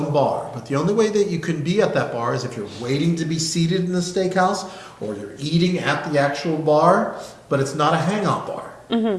bar, but the only way that you can be at that bar is if you're waiting to be seated in the steakhouse or you're eating at the actual bar, but it's not a hangout bar.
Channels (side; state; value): both; identical; correlation 1.00